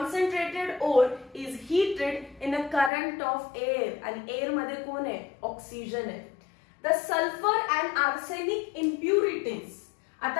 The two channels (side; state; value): right; drops out; at 2.9 s